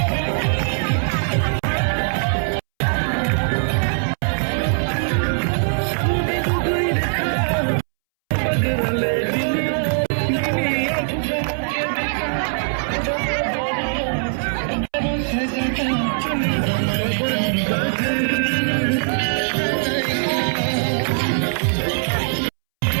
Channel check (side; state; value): left; silent; 65 dB below the other